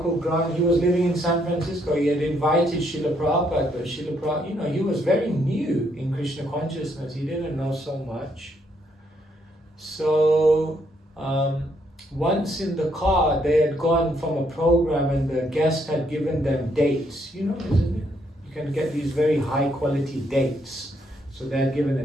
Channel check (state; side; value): normal; both; correlation 0.73